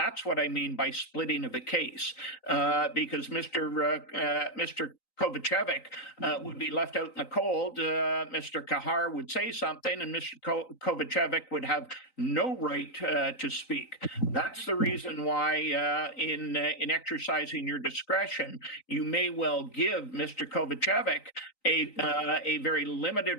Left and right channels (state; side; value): late; right; 3.9 ms